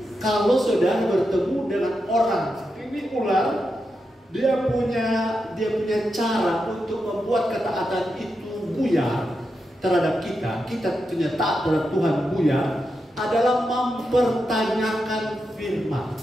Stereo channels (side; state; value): both; normal; correlation 0.87